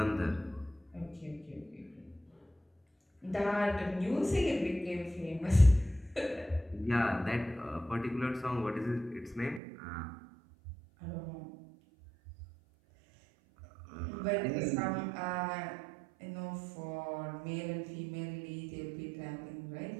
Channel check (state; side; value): drops out; left; at 9.6 s